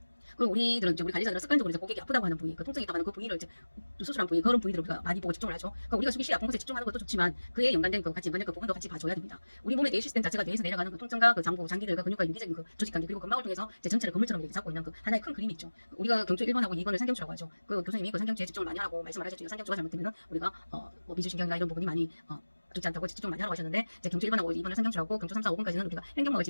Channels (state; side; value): inverted; both; correlation -1.00